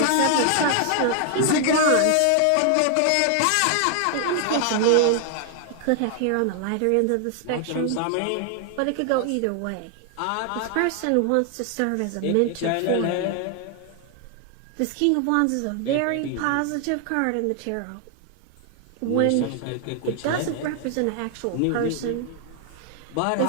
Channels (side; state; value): both; different; correlation 0.00